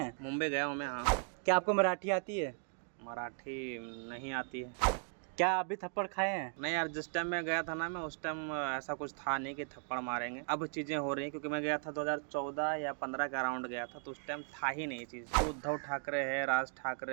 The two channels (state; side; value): silent; left; 53 dB below the other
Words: मुंबई गया हूँ मैं। हाँ, क्या आपको मराठी आती है? मराठी नहीं आती है। क्या आप भी थप्पड़ खाए हैं? नहीं यार, जिस टाइम मैं गया था ना, मैं उस टाइम ऐसा कुछ था नहीं कि थप्पड़ मारेंगे। अब चीज़ें हो रही हैं क्योंकि मैं गया था 2014 या 15 का अराउंड गया था, तो उस टाइम था ही नहीं ये चीज़। तो उद्धव ठाकरे है, राज